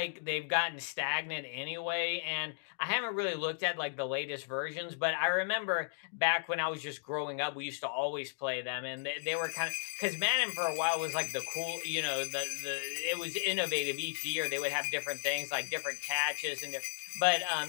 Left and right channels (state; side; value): silent; right; digital silence